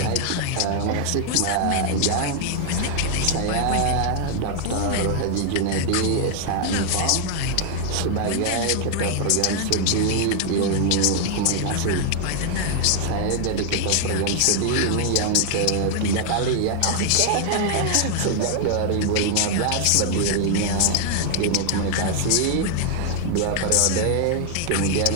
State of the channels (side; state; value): both; different; correlation 0.00